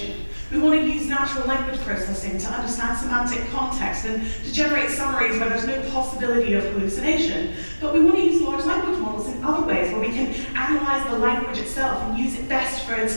We want to use natural language processing to understand semantic context and to generate summaries where there's no possibility of hallucination. But we want to use large language models in other ways where we can analyze the language itself and use it best for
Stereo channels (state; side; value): inverted; both; correlation -1.00